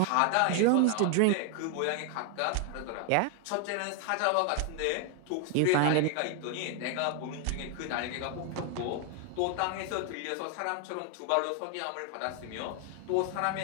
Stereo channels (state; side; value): different; both; correlation 0.00